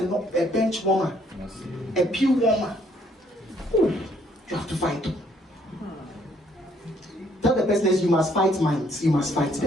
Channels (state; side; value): normal; both; correlation 0.67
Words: bench warmer, a pew warmer. Ooh, you have to fight. Tell the person, you must fight minds. You must fight